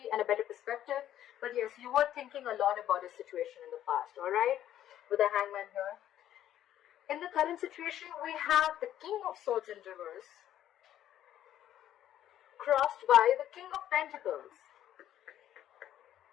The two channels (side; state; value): right; quieter; 11.7 dB